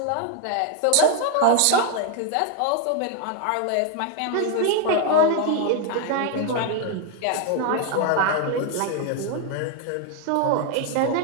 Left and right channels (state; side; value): different; both; correlation 0.00